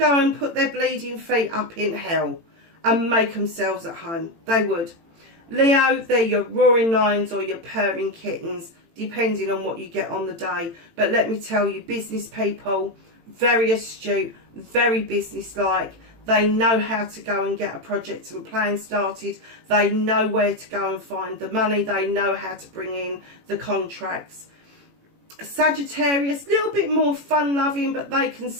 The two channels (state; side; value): late; left; 18 ms